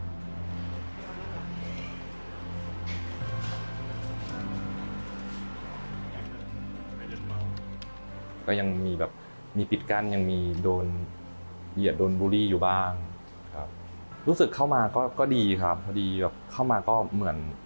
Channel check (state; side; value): inverted; both; correlation -1.00